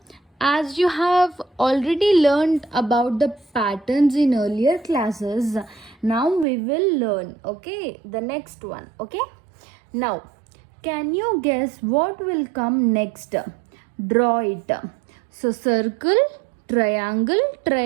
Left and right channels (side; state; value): left; drops out; at 6.5 s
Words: as you have already learned about the patterns in earlier classes, now we will learn, okay, the next one, okay? Now, can you guess what will come next? Draw it. So, circle, triangle,